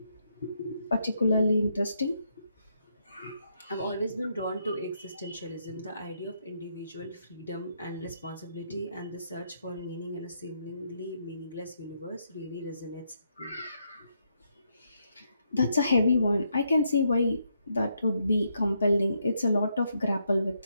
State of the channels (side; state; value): both; inverted; correlation -0.77